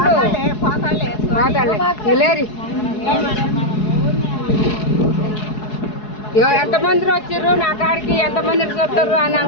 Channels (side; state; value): right; late; 4.7 ms